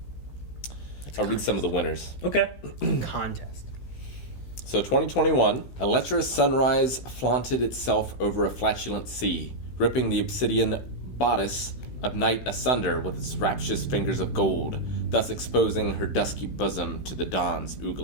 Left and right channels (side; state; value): right; late; 16 ms